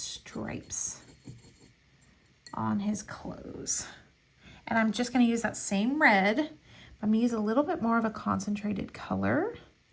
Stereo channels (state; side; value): identical; both; correlation 1.00